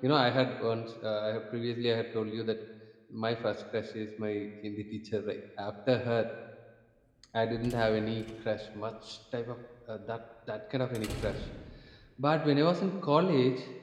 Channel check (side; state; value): both; identical; correlation 1.00